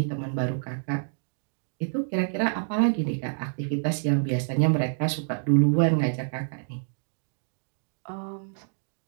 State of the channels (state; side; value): silent; left; digital silence